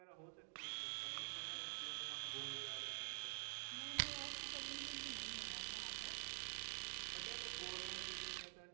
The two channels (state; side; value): silent; left; digital silence